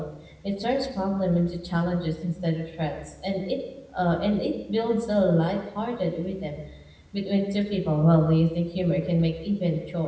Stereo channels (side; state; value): both; identical; correlation 1.00